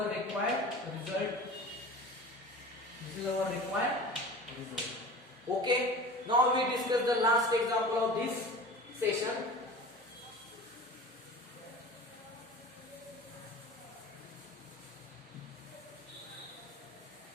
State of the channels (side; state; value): both; normal; correlation 0.37